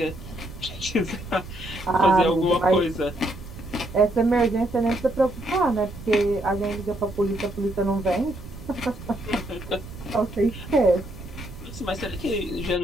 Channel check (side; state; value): right; noise; rumble, 15 dB below the sound